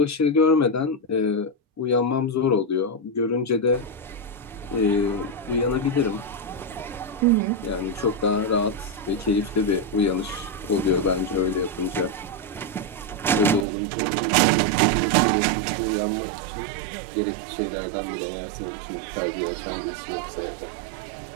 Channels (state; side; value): drops out; left; at 13.7 s